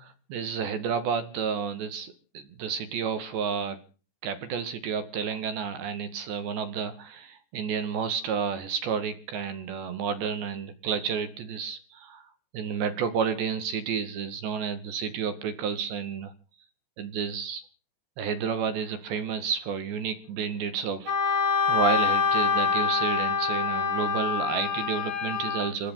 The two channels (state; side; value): late; left; 14 ms